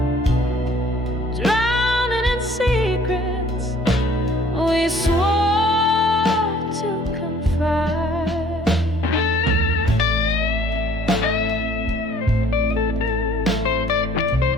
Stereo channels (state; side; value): normal; both; correlation 0.56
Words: drowning in secrets we swore to confide.